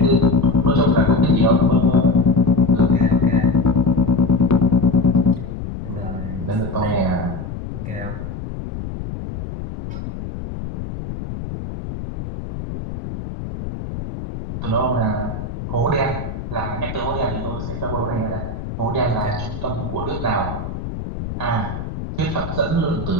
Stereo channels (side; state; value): left; noise; rumble, 8 dB below the sound